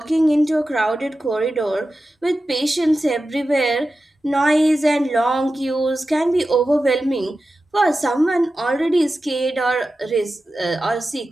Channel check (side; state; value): both; normal; correlation 0.93